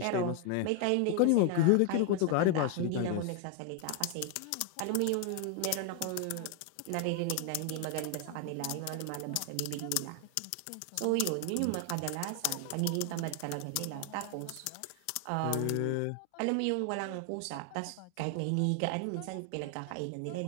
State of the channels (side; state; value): both; different; correlation 0.00